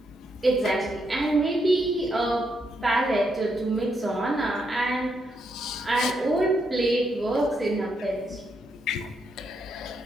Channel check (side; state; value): both; normal; correlation 0.79